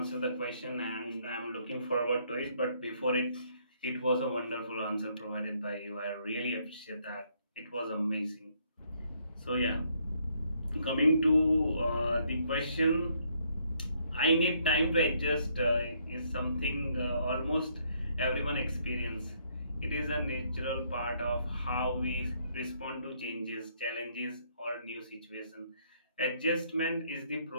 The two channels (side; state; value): both; inverted; correlation -0.70